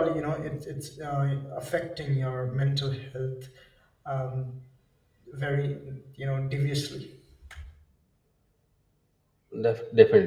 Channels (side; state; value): both; identical; correlation 1.00